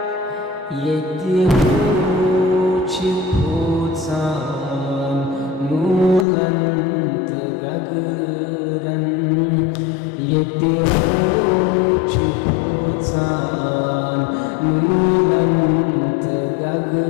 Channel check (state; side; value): drops out; right; at 6.2 s